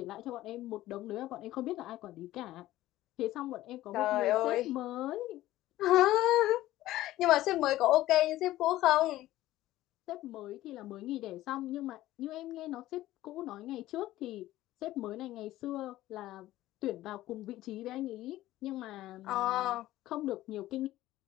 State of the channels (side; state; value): right; quieter; 15.5 dB